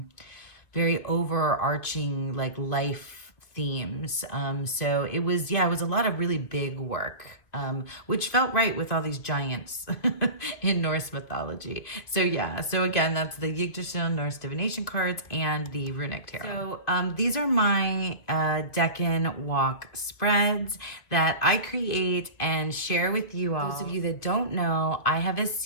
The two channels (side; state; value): right; late; 2.5 ms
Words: very overarching like life themes. So it was a lot of really big work, which felt right with all these giants in Norse mythology. So yeah, so again, that's the Yggdrasil Norse divination cards and the Runic Tarot. So these are my Deccan walk spreads that I create and share with you all. Those of you that don't know, I have a